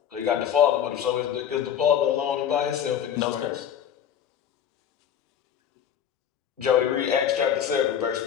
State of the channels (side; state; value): right; quieter; 9.2 dB